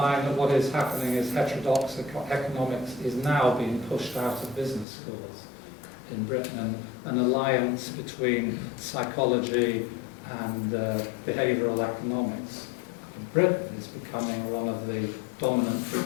that what is happening is heterodox economics is now being pushed out of business schools in Britain, and an alliance between psychology and behavioural economics in Britain is becoming one of the dominant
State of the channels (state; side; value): drops out; right; at 4.9 s